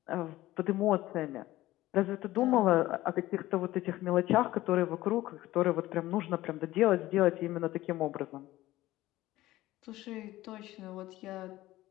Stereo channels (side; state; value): right; quieter; 16.4 dB